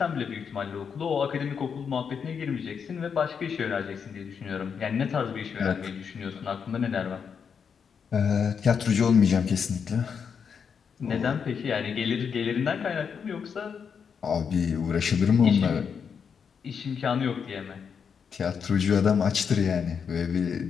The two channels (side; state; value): right; quieter; 6.7 dB